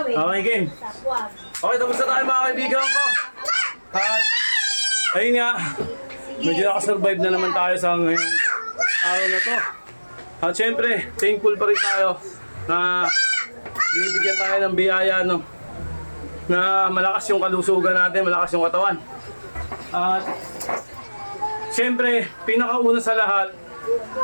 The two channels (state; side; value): inverted; both; correlation -1.00